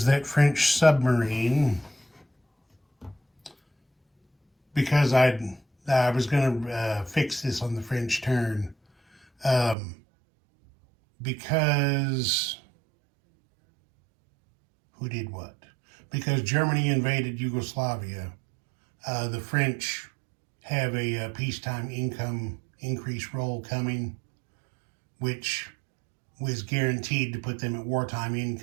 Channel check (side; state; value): left; drops out; at 9.8 s